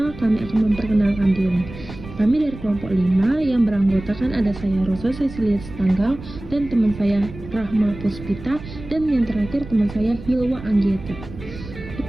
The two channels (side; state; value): right; noise; rumble, 14 dB below the sound